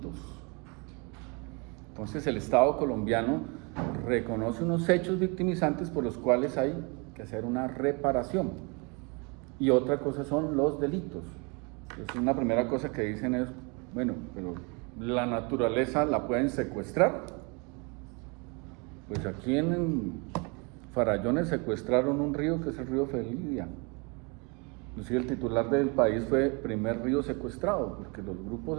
Entonces el Estado colombiano reconoce unos hechos victimizantes por los cuales hay que hacer una reparación, y otra cosa son los delitos. Entonces una primera cosa que dicen es, bueno, pero la naturaleza la pueden secuestrar. Pues aquí en Farallones secuestraron un río que es el río Felidia. Inclusive el titular del país fue primer río secuestrado, porque los grupos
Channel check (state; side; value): quieter; left; 31.5 dB